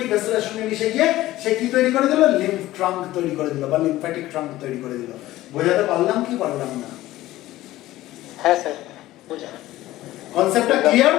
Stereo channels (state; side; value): quieter; right; 16.1 dB